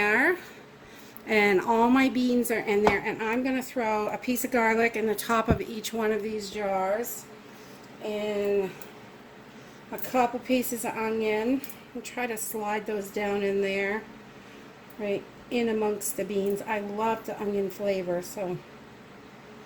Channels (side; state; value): both; identical; correlation 1.00